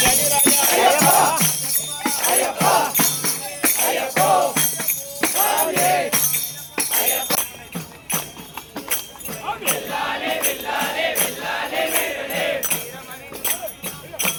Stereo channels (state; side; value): identical; both; correlation 1.00